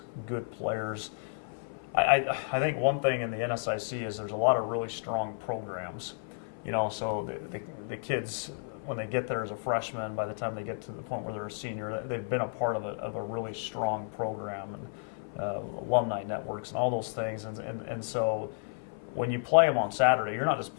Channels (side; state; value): right; silent; 55 dB below the other